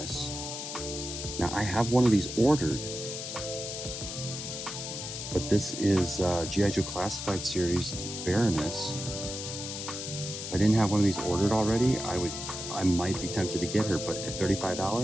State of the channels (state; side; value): noise; left; hiss, 6 dB below the sound